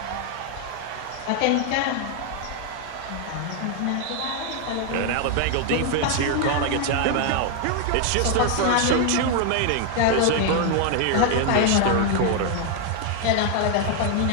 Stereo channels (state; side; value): different; both; correlation 0.00